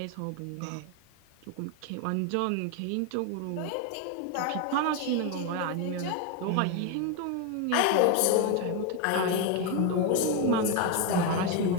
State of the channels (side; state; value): both; different; correlation 0.02